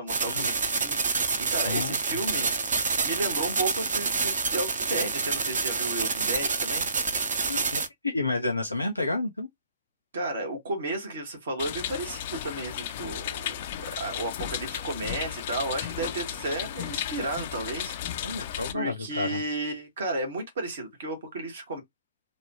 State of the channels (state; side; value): inverted; both; correlation -0.56